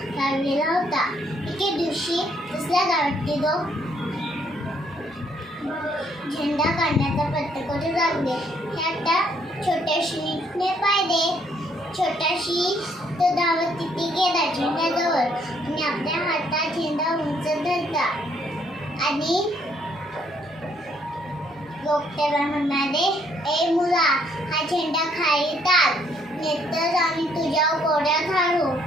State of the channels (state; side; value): normal; both; correlation 0.68